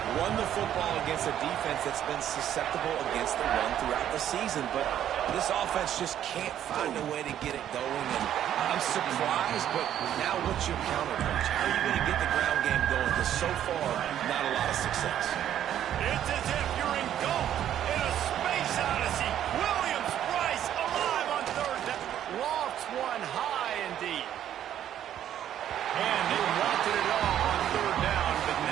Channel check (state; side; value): quieter; left; 10.8 dB